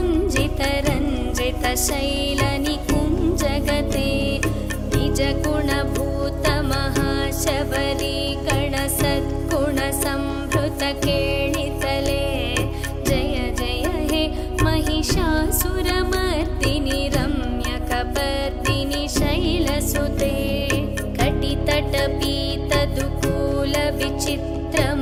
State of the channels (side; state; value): both; identical; correlation 1.00